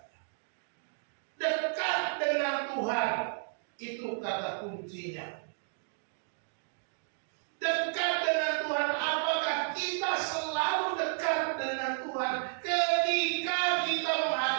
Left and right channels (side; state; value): left; silent; digital silence